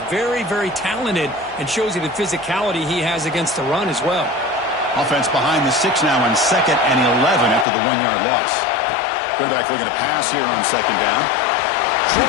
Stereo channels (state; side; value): drops out; right; at 7.7 s